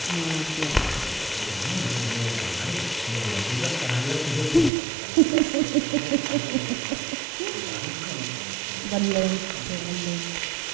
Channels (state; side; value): drops out; left; at 4.7 s